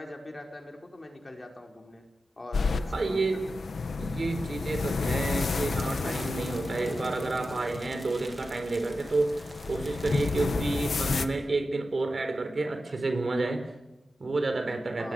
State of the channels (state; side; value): normal; both; correlation 0.91